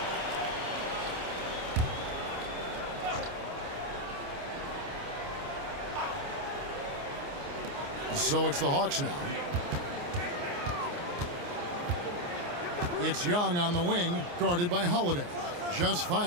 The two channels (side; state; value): left; late; 29 ms